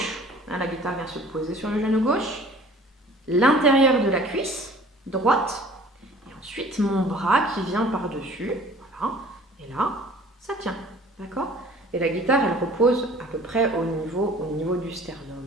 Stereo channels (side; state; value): both; normal; correlation 0.49